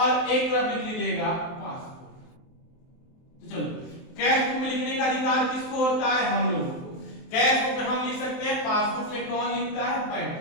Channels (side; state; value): right; late; 23 ms